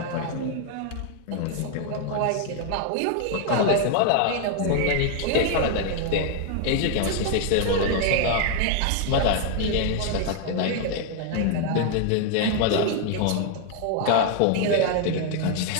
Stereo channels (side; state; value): both; different; correlation 0.00